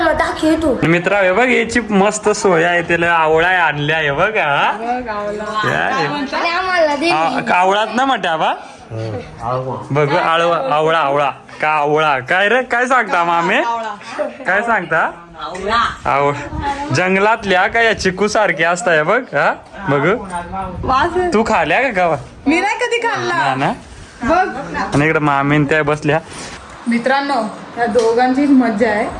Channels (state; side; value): identical; both; correlation 1.00